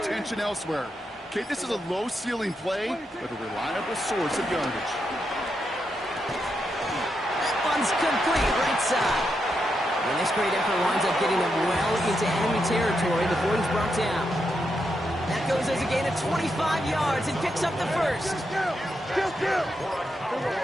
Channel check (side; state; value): both; normal; correlation 0.83